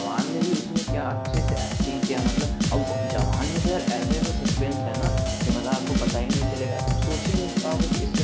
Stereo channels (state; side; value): identical; both; correlation 1.00